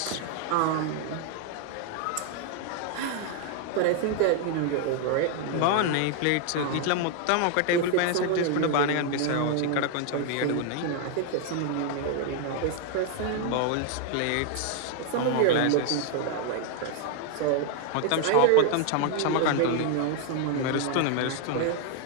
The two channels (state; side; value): different; both; correlation 0.00